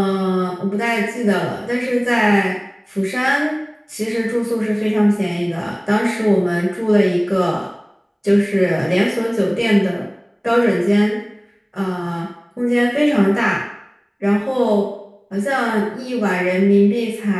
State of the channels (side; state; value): both; identical; correlation 1.00